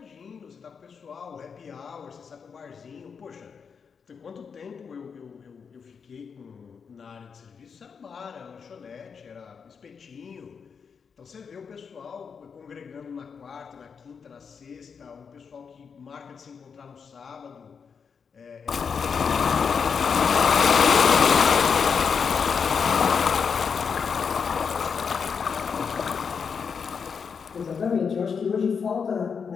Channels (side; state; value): right; quieter; 6.2 dB